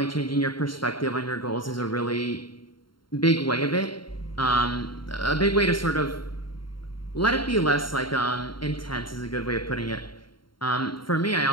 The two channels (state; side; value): late; right; 0.73 ms